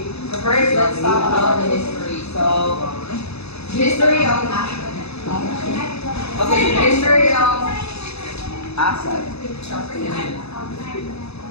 So first, let's talk about the history. So the history of HACCP. Okay, the history of HACCP.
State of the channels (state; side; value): late; right; 0.79 ms